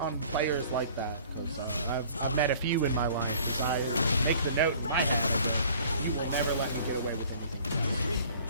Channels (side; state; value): both; inverted; correlation -0.51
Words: players like that, because I've met a few in my life. I make the note in my head that you will never let me get away with